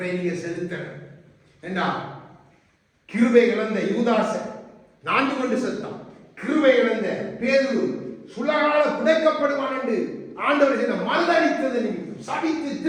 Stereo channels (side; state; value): both; identical; correlation 1.00